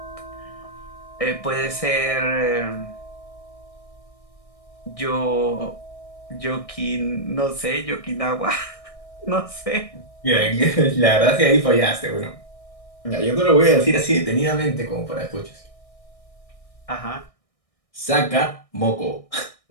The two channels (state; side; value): late; right; 1.6 ms